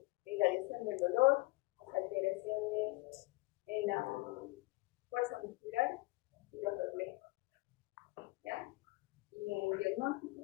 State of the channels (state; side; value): quieter; right; 23.0 dB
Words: irradiación del dolor, las alteraciones en la fuerza muscular y los reflejos. ¿Ya? Y en el